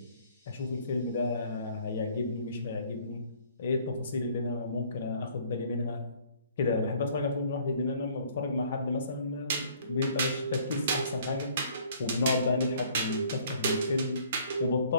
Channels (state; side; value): inverted; both; correlation -0.58